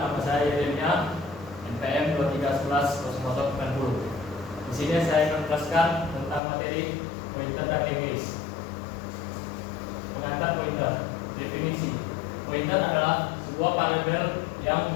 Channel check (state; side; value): drops out; right; at 6.4 s